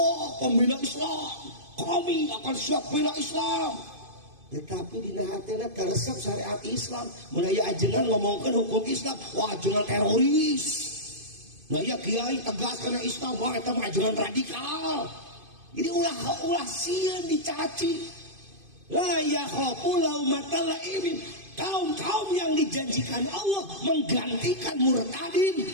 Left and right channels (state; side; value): late; left; 2.5 ms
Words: pembela Islam, kami akan siap bela Islam. Tetapi dina hatena teresep syariat Islam. Mun aya ajengan ngomongkeun hukum Islam, wah ajengan teroris. Nah ya kiai tegas karena Islam, wah eta mah ajengan radikal. Jadi ulah sieun dicaci. La yakhafu laumata laimin. Kaum-kaum yang dijanjikan Allah menggantikan murtadin